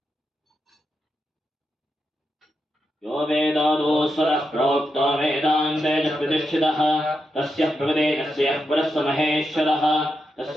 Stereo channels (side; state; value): both; normal; correlation 0.86